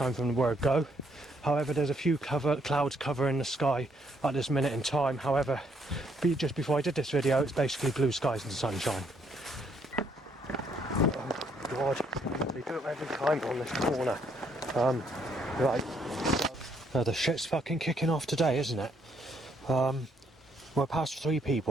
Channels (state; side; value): normal; both; correlation 0.70